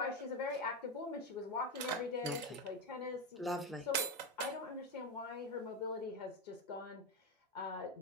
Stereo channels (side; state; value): both; normal; correlation 0.12